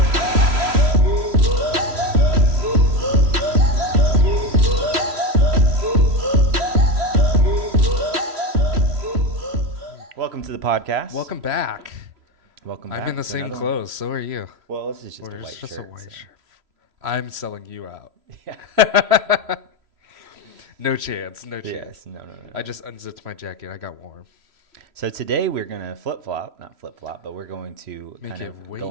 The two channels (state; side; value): late; left; 3.0 ms